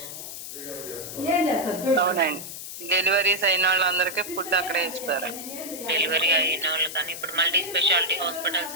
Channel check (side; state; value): left; noise; hiss, 9 dB below the sound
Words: అవునండి, డెలివరీస్ అయిన వాళ్ళందరికీ ఫుడ్ అక్కడే ఇస్తారు. డెలివరీ అయిన వాళ్ళు కానీ ఇప్పుడు మల్టీ స్పెషాలిటీ